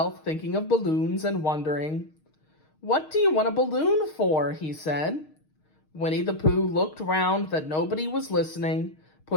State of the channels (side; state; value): right; late; 6.4 ms